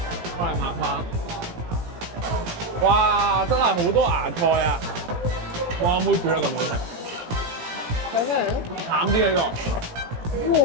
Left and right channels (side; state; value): left; late; 17 ms